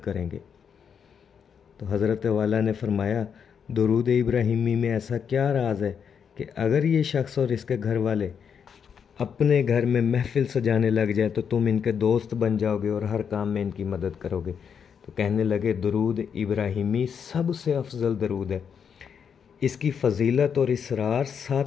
तो हज़रत वाला ने फरमाया, दरूद इब्राहिमी में ऐसा क्या राज है कि अगर ये शख्स और इसके घर वाले अपने घर में महफ़िल सजाने लग जाए तो तुम इनके दोस्त बन जाओगे और हर काम में इनकी मदद करोगे? तो कहने लगे, दरूद इब्राहिमी सबसे अफजल दरूद है, इसकी फ़जीलत और इसरार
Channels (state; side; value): quieter; right; 7.2 dB